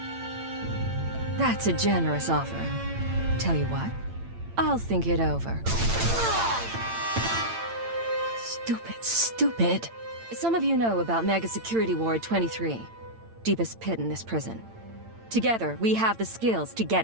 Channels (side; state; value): left; late; 8.9 ms